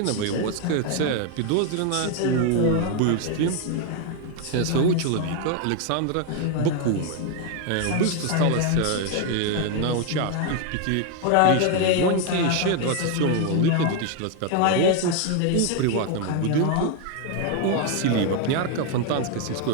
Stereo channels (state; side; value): different; both; correlation 0.01